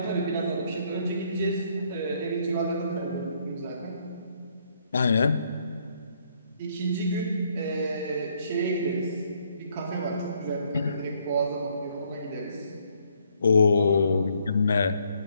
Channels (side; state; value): both; inverted; correlation -0.69